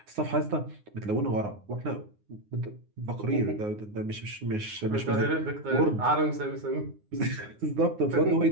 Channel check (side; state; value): left; late; 9.6 ms